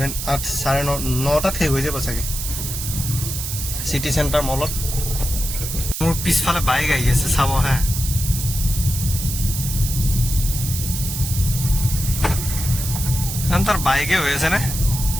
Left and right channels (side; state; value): right; noise; hiss, 5 dB below the sound